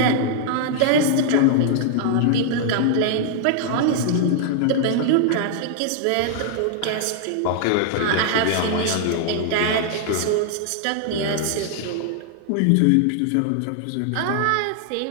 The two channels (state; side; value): different; both; correlation -0.01